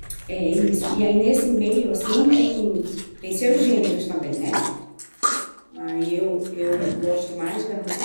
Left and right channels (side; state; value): both; inverted; correlation -1.00